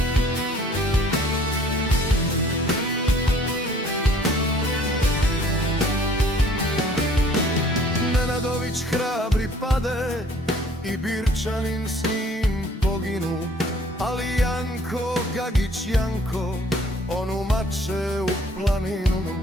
Nenadović hrabri pade i Birčanin s njim poginu, ali Janko, Gagić Janko, on umače u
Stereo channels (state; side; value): normal; both; correlation 0.56